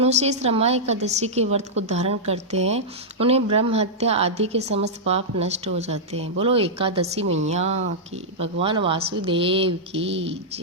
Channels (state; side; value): normal; both; correlation -0.09